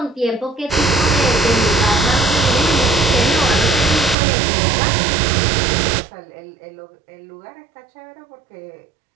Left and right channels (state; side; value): drops out; left; at 4.2 s